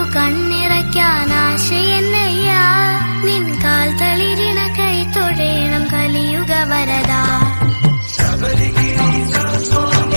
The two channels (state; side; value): inverted; both; correlation -1.00